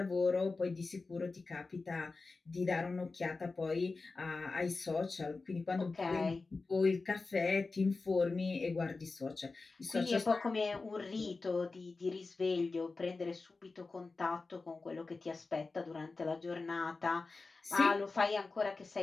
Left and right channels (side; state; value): right; quieter; 3.8 dB